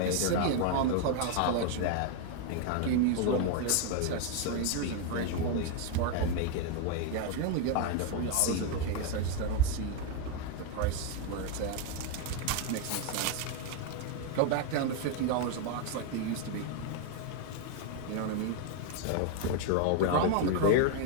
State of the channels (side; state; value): both; different; correlation 0.01